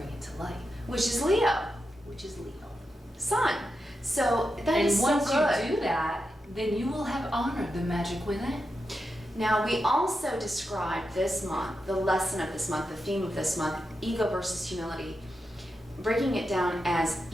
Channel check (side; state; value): both; normal; correlation 0.88